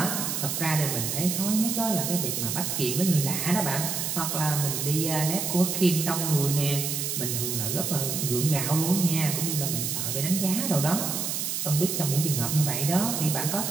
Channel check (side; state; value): right; noise; hiss, 2 dB below the sound